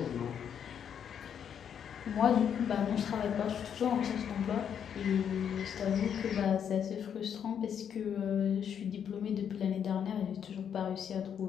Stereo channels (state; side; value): quieter; right; 8.3 dB